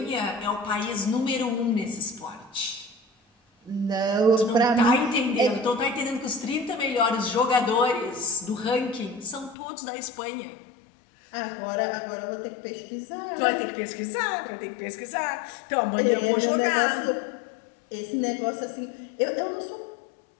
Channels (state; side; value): drops out; right; at 9.6 s